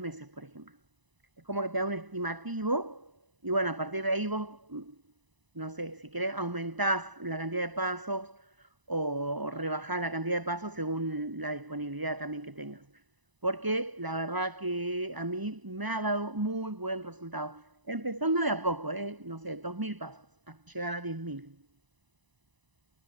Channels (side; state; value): left; late; 1.0 ms